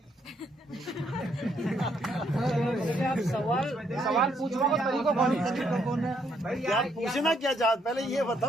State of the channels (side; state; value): both; normal; correlation 0.72